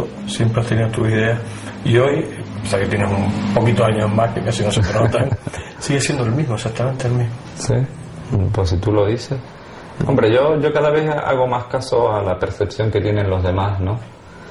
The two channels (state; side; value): identical; both; correlation 1.00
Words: siempre has tenido tus ideas. Y hoy, o sea que tienes un poquito de años más, que casi no se te notan, sigue siendo el mismo, exactamente el mismo. Sí, pues si tú lo dices. Hombre, yo cada vez hago más caso a la percepción que tienen los demás, ¿no?